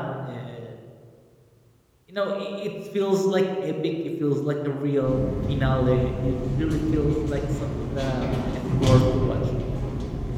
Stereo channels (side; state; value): both; identical; correlation 1.00